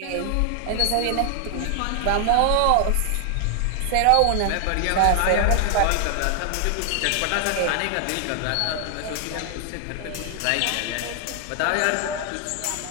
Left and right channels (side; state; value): both; different; correlation 0.00